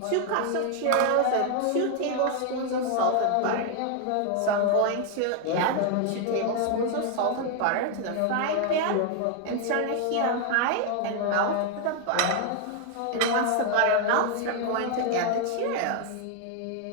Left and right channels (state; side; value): different; both; correlation 0.00